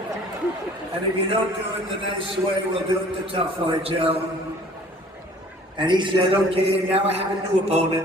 And if you don't do it the nice way, we'll do it the tough way, Joe. And he said, okay, now I have a new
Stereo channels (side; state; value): both; normal; correlation 0.51